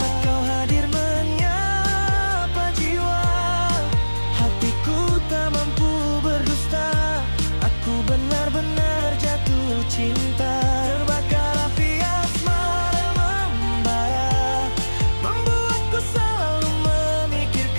kau hadir menyapa jiwa. Hatiku tak mampu berdusta, aku benar-benar jatuh cinta. Terbakar api asmara membara, membuatku selalu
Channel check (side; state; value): both; inverted; correlation -1.00